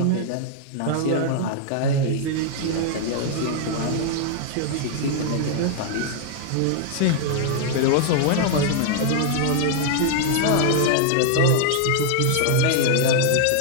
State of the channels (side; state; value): both; different; correlation 0.00